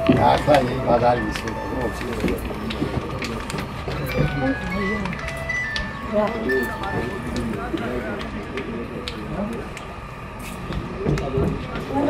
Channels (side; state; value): both; identical; correlation 1.00